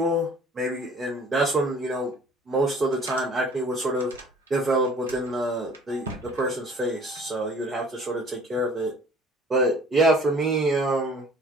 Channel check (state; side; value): normal; both; correlation 0.51